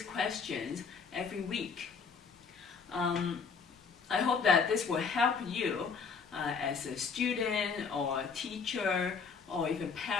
questions every week. I hope that this will help you as a student or a teacher or even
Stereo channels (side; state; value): right; quieter; 5.6 dB